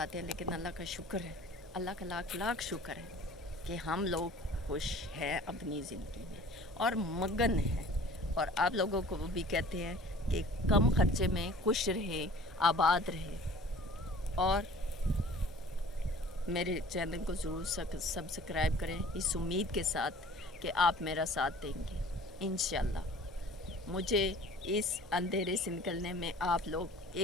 ہیں, لیکن اللہ کا شکر ہے, اللہ کا لاکھ لاکھ شکر ہے کہ ہم لوگ خوش ہیں اپنی زندگی میں اور مگن ہیں. اور آپ لوگوں کو وہ بھی کہتے ہیں کہ کم خرچے میں خوش رہیں, آباد رہیں. اور میرے چینل کو ضرور سبسکرائب کریں اس امید کے ساتھ کہ آپ میرا ساتھ دیں گے. انشاءاللہ مجھے اس اندھیرے سے نکلنے میں آپ لوگ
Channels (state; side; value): normal; both; correlation 0.47